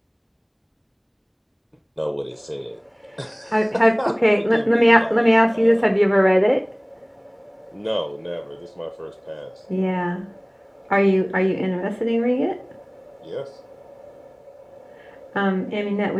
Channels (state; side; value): identical; both; correlation 1.00